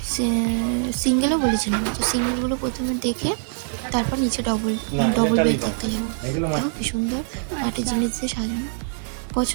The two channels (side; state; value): left; silent; 63 dB below the other